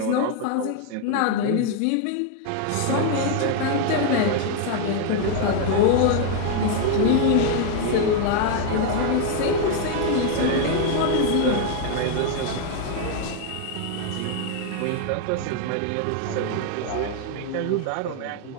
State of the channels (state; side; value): different; both; correlation 0.00